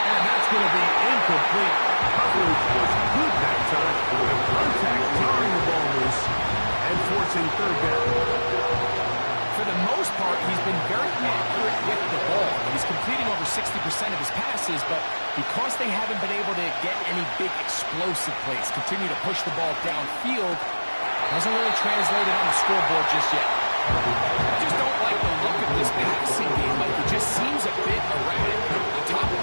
And that's going to be incomplete. Coverage was good that time. The contact jarring the ball loose and forcing third down. For the most part, he's been very accurate with the ball. He's completing over 60% of his passes, but because they haven't been able to get any big explosive plays, continue to push the ball downfield, hasn't really translated on the scoreboard just yet. I just don't like the look of this passing game. Like, it just seems a bit erratic. On top of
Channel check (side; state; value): both; inverted; correlation -1.00